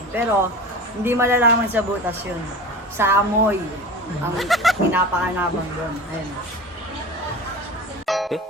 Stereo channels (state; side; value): normal; both; correlation 0.33